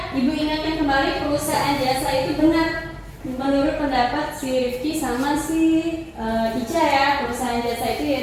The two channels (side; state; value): both; identical; correlation 1.00